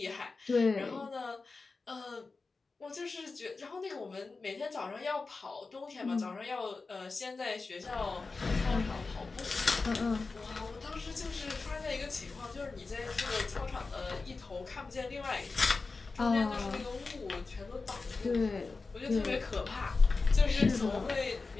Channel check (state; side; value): quieter; right; 4.0 dB